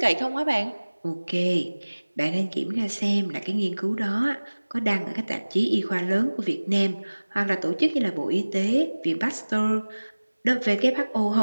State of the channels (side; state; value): both; inverted; correlation -1.00